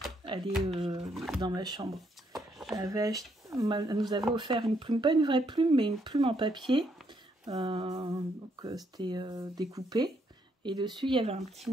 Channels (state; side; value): normal; both; correlation 0.73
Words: Elle est dans ma chambre. Elle nous avait offert une plume, pas une vraie plume, mais une plume en papier. Donc, c'était découpé. Et dessus, il y avait un petit